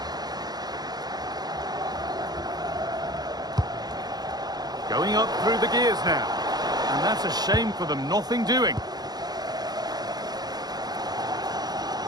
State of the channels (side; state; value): left; late; 0.19 ms